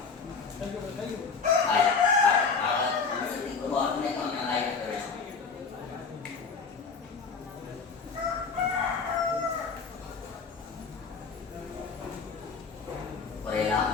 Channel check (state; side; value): quieter; right; 5.2 dB